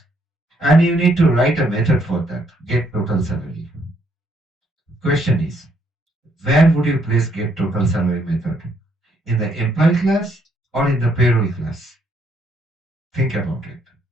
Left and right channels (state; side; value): normal; both; correlation 0.71